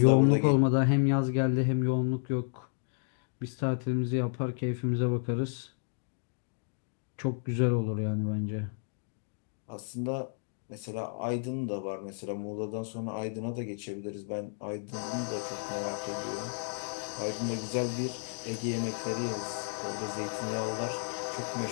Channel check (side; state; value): right; silent; digital silence